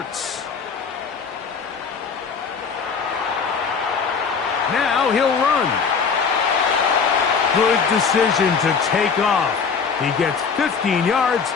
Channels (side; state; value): right; quieter; 5.8 dB